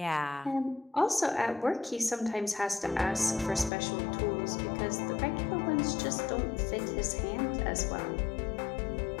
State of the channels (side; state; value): right; drops out; at 3.7 s